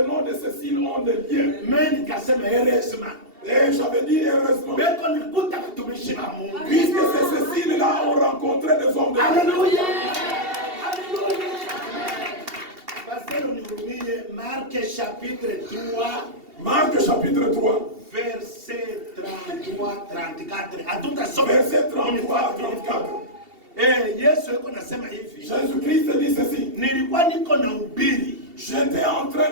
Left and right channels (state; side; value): late; left; 2.7 ms